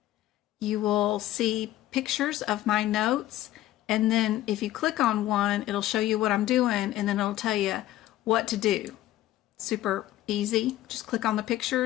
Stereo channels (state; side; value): quieter; right; 14.5 dB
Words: you will see pictures of my notes, and then if you click on one, it'll show you what I'm doing, and then it'll tell you what to do. Super easy. Just click on the